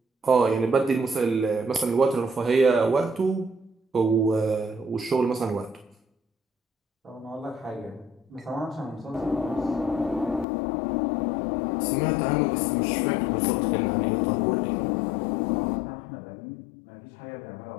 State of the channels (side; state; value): right; drops out; at 10.5 s